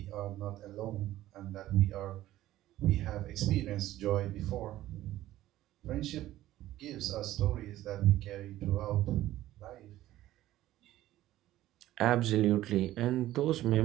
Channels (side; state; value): left; quieter; 14.6 dB